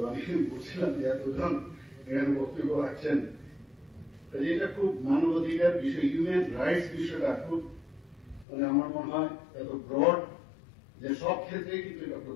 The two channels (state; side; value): drops out; right; at 8.5 s